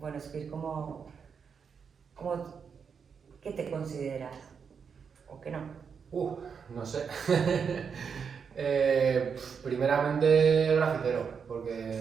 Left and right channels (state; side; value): quieter; left; 6.4 dB